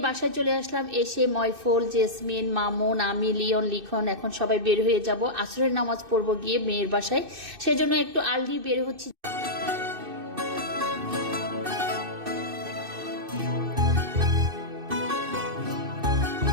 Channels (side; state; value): left; late; 2.6 ms